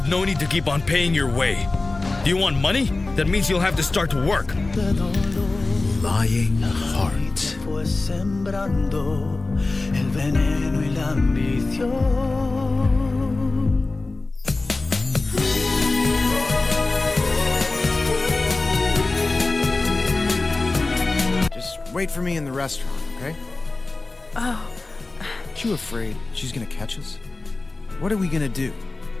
no need to keep on paying your way. Do you want money? That means you'll have to start to work. Lying heart. Fue sembrando el veneno y la ambición. Just wait for me in the restaurant, okay? Oh. Aren't you afraid she's gonna catch us? What are we gonna do?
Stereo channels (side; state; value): right; quieter; 3.3 dB